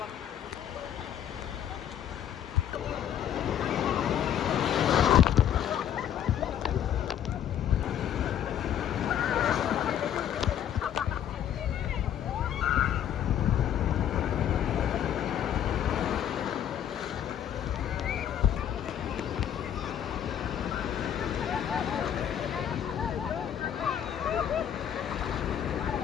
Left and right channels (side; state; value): right; quieter; 9.8 dB